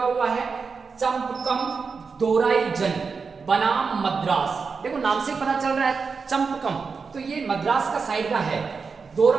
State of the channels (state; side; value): quieter; left; 5.1 dB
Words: हुआ है, चंपकम दोराई जन बनाम मद्रास। देखो, नाम से पता चल रहा है चंपकम, तो ये मद्रास का साइड का है।